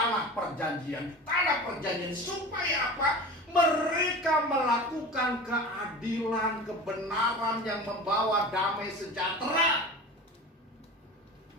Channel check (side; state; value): both; normal; correlation 0.34